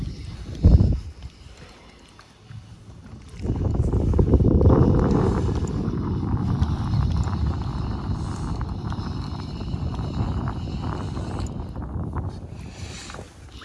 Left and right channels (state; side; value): identical; both; correlation 1.00